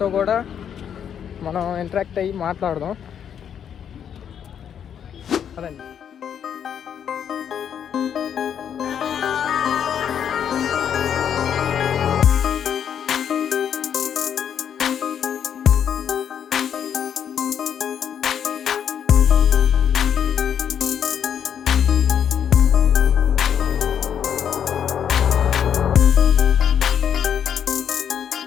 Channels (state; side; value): quieter; right; 8.6 dB